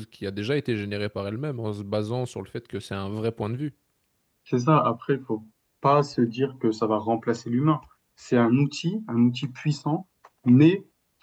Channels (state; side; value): identical; both; correlation 1.00